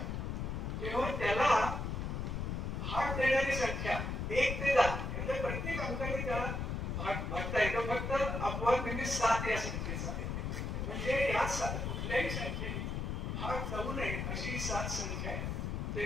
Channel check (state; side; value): noise; left; rumble, 2 dB below the sound